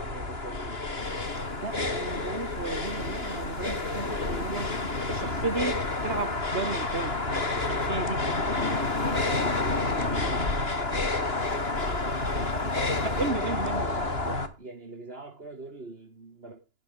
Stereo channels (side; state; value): left; late; 2.9 ms